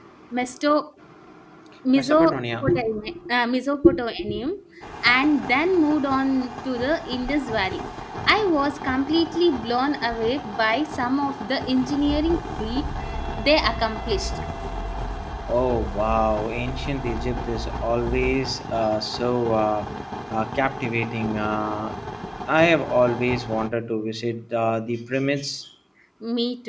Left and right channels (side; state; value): both; identical; correlation 1.00